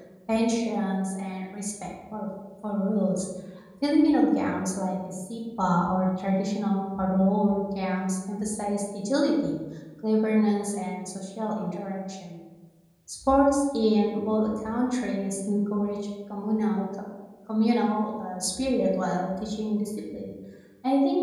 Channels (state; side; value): identical; both; correlation 1.00